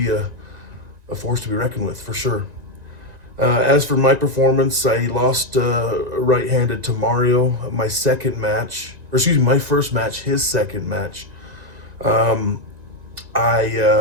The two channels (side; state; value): left; late; 1.9 ms